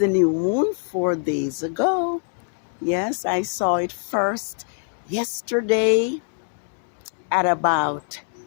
new moon 4 days ago. Yes, I saw it first yesterday at about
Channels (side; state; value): right; silent; 62 dB below the other